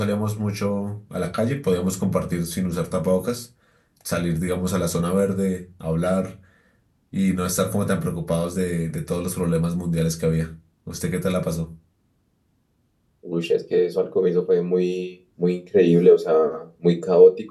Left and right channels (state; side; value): identical; both; correlation 1.00